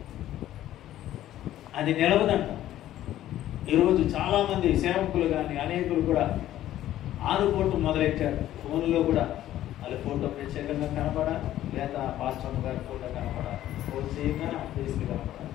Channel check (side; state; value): right; quieter; 13.1 dB